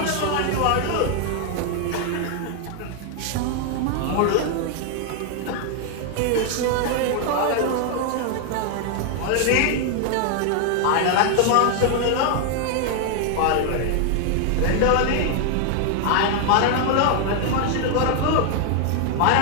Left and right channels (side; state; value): both; different; correlation 0.00